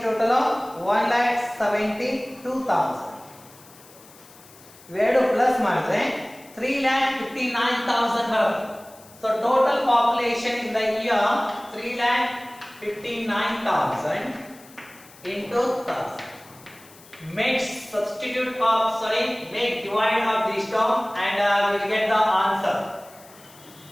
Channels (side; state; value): left; noise; hiss, 23 dB below the sound